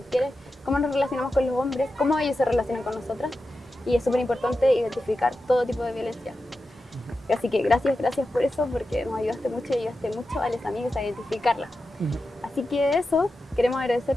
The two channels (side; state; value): both; normal; correlation 0.91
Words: cómo nos relacionamos con los hombres, cómo ellos se relacionan con nosotras. Y es súper importante identificar todo tipo de violencia. Así que gracias por eso, porque nos ayudaste mucho y ayudaste mucho a las amigas a identificarla. Así que eso, queremos